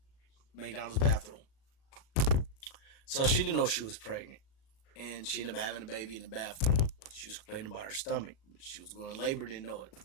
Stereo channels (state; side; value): late; right; 36 ms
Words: McDonald's bathroom. So she didn't know she was pregnant, and she ended up having a baby in the bathroom. She was complaining about her stomach. She was going to labor, didn't know it.